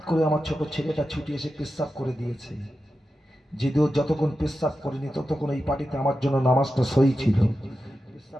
করে আমার ছোট ছেলেটা ছুটে এসে পেশাব করে দিয়েছে। যদিও যতক্ষণ পেশাব করিনি ততক্ষণ এই পাটিতে আমার জন্য নামাজটা সই ছিল।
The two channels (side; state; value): both; normal; correlation 0.91